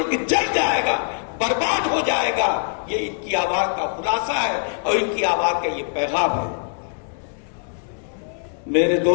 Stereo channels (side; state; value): right; silent; digital silence